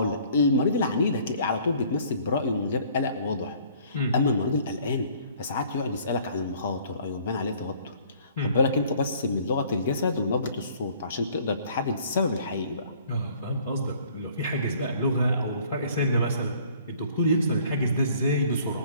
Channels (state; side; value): inverted; both; correlation -0.56